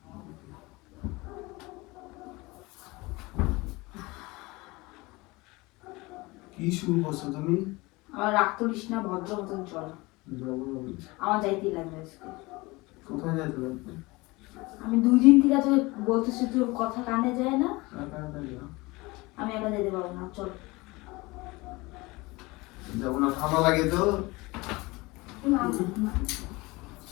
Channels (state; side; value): quieter; right; 23.0 dB